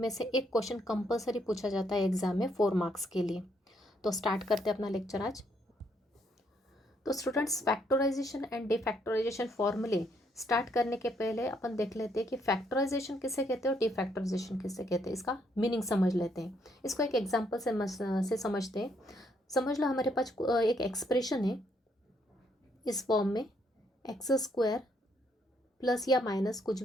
से एक क्वेश्चन कंपलसरी पूछा जाता है एग्जाम में 4 मार्क्स के लिए। तो स्टार्ट करते हैं अपना लेक्चर आज। तो स्टूडेंट्स, फैक्टराइजेशन एंड डिफैक्टराइजेशन फॉर्मूले स्टार्ट करने के पहले अपन देख लेते हैं कि फैक्टराइजेशन किसे कहते हैं और डिफैक्टराइजेशन किसे कहते हैं। इसका मीनिंग समझ लेते हैं। इसको एक एग्जाम्पल से समझते हैं। समझ लो हमारे पास एक एक्सप्रेशन है इस फॉर्म में, एक्स स्क्वायर प्लस या माइनस कुछ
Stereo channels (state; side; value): normal; both; correlation 0.72